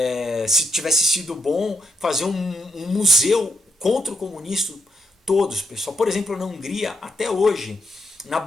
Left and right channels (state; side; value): normal; both; correlation 0.79